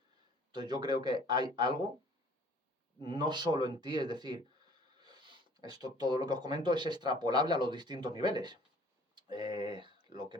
Entonces yo creo que hay algo, no solo en ti, es decir, todo lo que os comento es extrapolable a los distintos niveles. Lo que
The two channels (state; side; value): normal; both; correlation 0.54